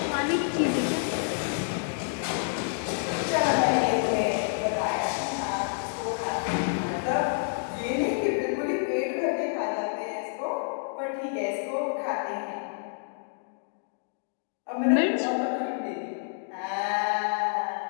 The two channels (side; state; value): right; silent; digital silence